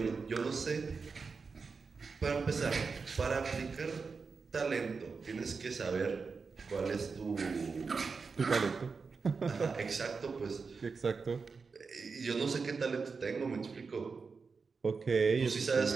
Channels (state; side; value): quieter; left; 4.9 dB